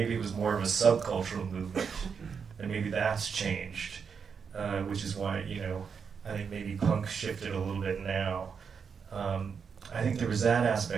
it was more of a subcultural movement, and maybe that's changed, which is why, you know, I think maybe punk shifted a little bit now. I think there was that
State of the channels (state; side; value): quieter; left; 6.2 dB